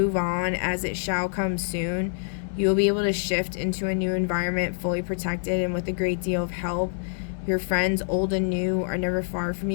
on, as it shall come soon, you will be able to shift into a new environment fully protected and with a great deal of help. Your friends, old and new, are never far from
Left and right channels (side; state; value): right; silent; digital silence